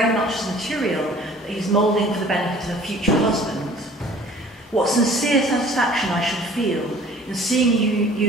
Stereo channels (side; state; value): both; normal; correlation 0.50